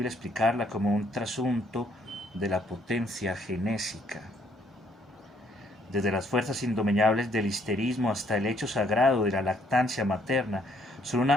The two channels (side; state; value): both; normal; correlation 0.67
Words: explicarla como un trasunto de la potencia genésica. Desde las fuerzas indomeñables del histerismo hasta el hecho sagrado de la lactancia materna, son